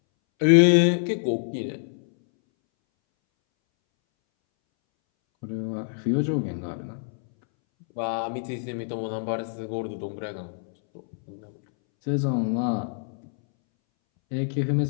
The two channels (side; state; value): right; silent; 61 dB below the other